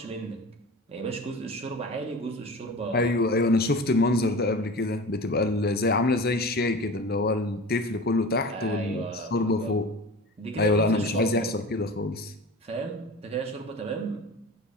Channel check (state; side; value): normal; both; correlation 0.34